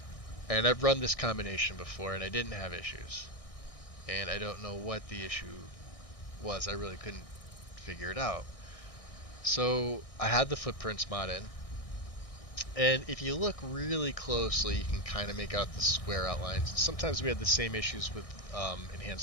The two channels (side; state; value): right; late; 1.6 ms